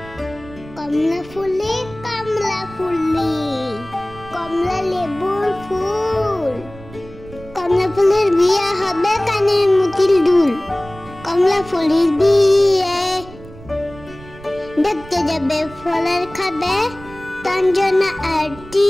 কমলা ফুলি কমলা ফুলি, কমলা লেবুর ফুল। কমলা ফুলের বিয়ে হবে কানের মুতিল দুল। কমলা ফুলের বিয়ে দেখতে যাবে ফলের খাবে তঞ্জনা আর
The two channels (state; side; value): noise; right; rumble, 18 dB below the sound